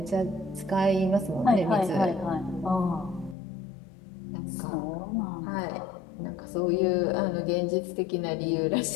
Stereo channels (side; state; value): right; drops out; at 3.4 s